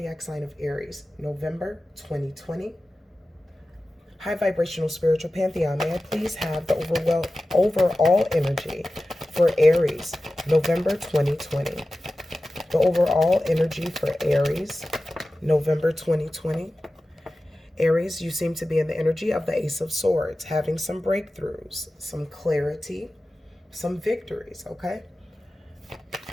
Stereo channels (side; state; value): both; normal; correlation 0.95